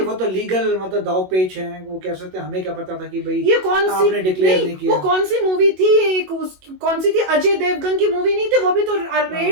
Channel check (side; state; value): left; late; 21 ms